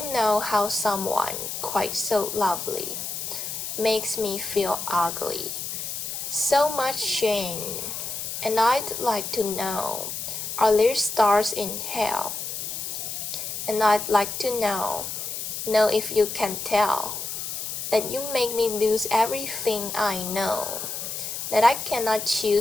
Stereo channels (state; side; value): noise; left; hiss, 5 dB below the sound